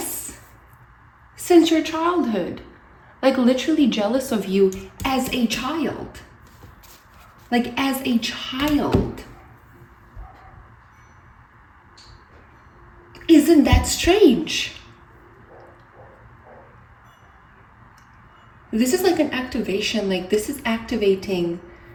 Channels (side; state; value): both; identical; correlation 1.00